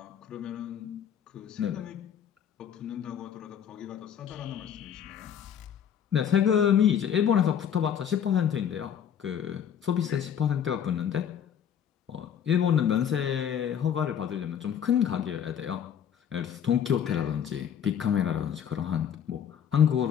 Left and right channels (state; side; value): quieter; right; 8.8 dB